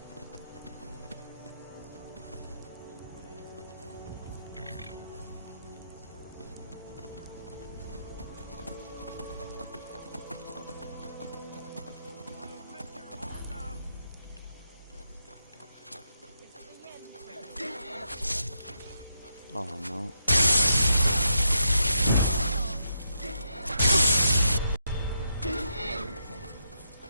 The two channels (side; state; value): both; inverted; correlation -0.82